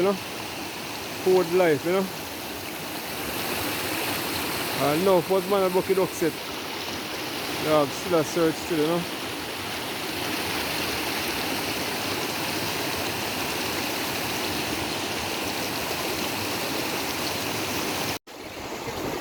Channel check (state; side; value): identical; both; correlation 1.00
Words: know. Code life, you know. And now first man a bucket duck set. Yeah, still a search still, you know.